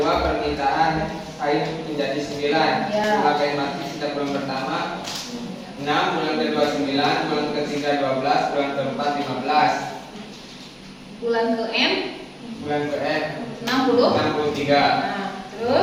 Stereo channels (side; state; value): both; identical; correlation 1.00